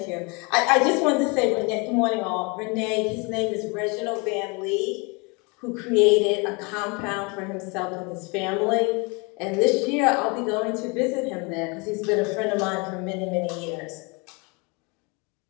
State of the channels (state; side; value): quieter; right; 29.9 dB